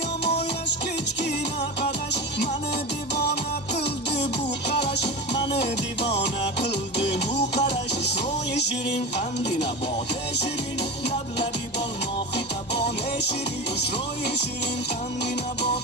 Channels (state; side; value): normal; both; correlation 0.25